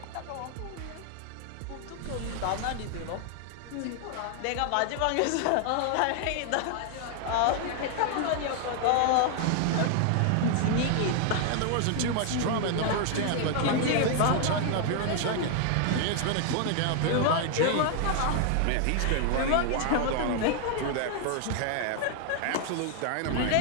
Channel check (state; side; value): different; both; correlation 0.00